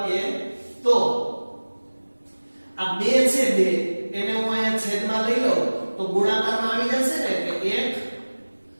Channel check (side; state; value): both; inverted; correlation -1.00